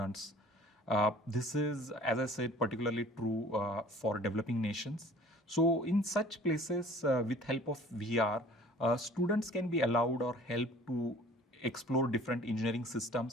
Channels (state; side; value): normal; both; correlation 0.49